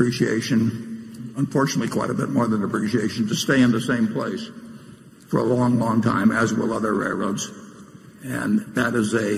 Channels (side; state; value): both; identical; correlation 1.00